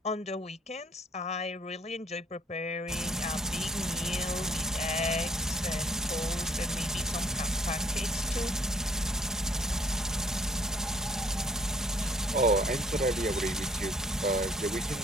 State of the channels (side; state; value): both; normal; correlation 0.61